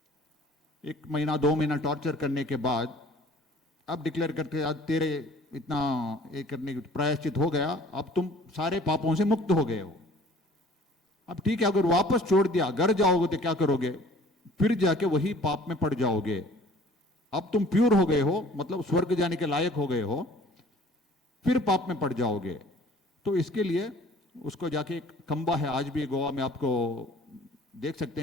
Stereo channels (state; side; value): normal; both; correlation 0.51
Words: 1 महीना 2 महीना टॉर्चर करने के बाद अब डिक्लेयर करके, आज तेरे इतना ये करने की प्रायश्चित हो गया, अब तुम सारे पापों से मुक्त हो गए हो। अब ठीक है, अगर वापस छोड़ दिया, घर जाओगे तो क्या करोगे? फिर जाके वही पाप में पड़ जाओगे। अब तुम प्योर हो गए हो, मतलब स्वर्ग जाने के लायक हो गए हो, फिर पाप में पड़ जाओगे। तो इसके लिए उसको जाके, एक खंबा है आज भी गोवा में, आपको देख सकते